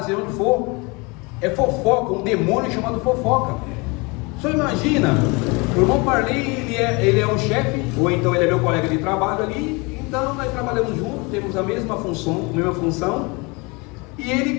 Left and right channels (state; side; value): quieter; right; 27.7 dB